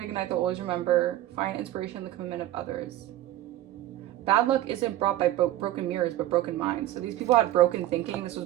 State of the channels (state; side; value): quieter; left; 14.2 dB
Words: a night they'll always remember. Find inspiration in the commitment of others. Bad luck isn't brought by broken mirrors, but broken minds. So these people had broken thinking. This was